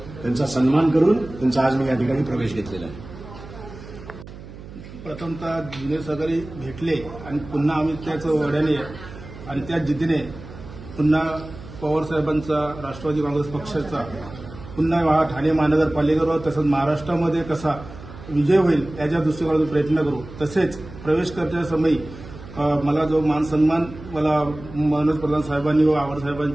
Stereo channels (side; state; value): right; noise; hum, 15 dB below the sound